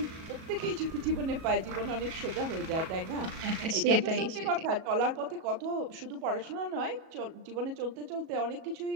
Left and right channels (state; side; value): late; left; 37 ms